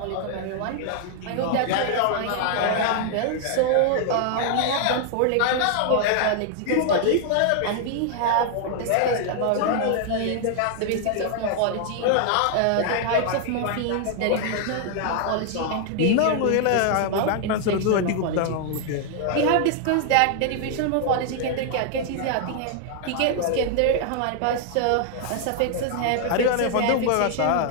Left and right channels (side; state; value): both; different; correlation 0.00